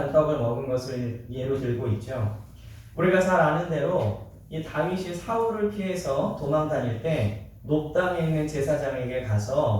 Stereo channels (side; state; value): both; identical; correlation 1.00